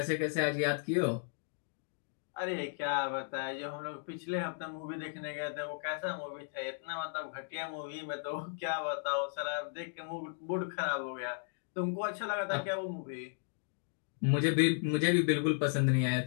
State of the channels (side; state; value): right; silent; digital silence